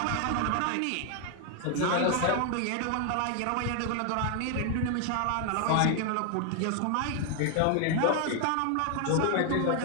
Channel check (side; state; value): both; different; correlation 0.00